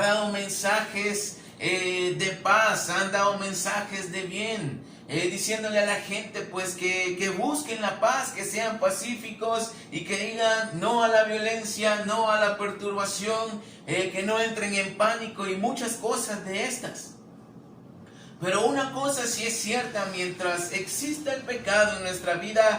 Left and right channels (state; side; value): identical; both; correlation 1.00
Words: dado mensajes de paz, han dado mensajes de bien, diciéndole a la gente pues que busquen la paz, que sean pacíficos y que digan no a la violencia, no a la perturbación, que no entren en pánico y muchas cosas de estas. Pero una cosa sí es cierta, mientras exista el pecado en nuestra